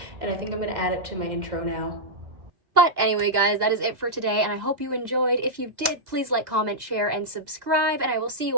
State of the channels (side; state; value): left; late; 2.0 ms